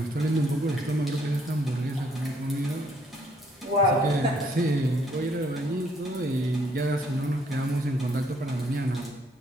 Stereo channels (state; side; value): normal; both; correlation 0.67